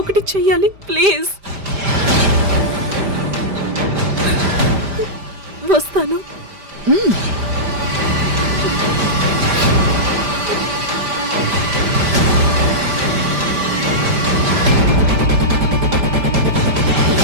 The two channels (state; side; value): late; left; 5.0 ms